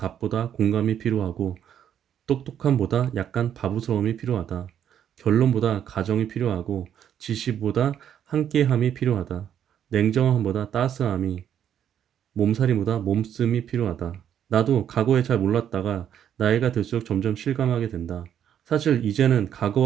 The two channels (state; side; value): quieter; left; 9.5 dB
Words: 공감이 필요하고 똑똑함보다 약간 바보스러움이 필요하다. 결론보다 가정이 필요하고 지시보다 함께함이 필요하다. 냉정함보다 따스함이, 몸살이보다 몸씀이 필요하다. 나도 과거에 잘 몰랐다가 나이가 들수록 점점 실감하게 된다. 사실 이제는